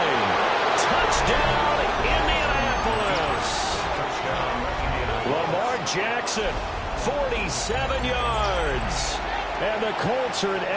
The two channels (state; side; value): identical; both; correlation 1.00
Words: Touchdown, Indianapolis. Lamar Jackson, 47 yards. And the Colts are an